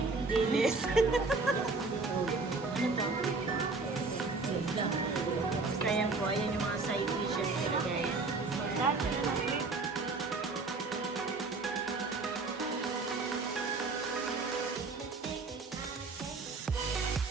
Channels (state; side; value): quieter; left; 3.9 dB